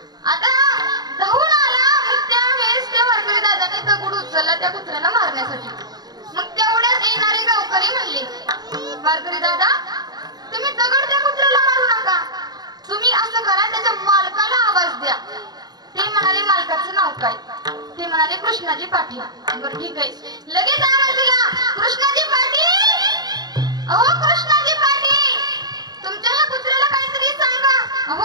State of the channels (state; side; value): late; left; 0.19 ms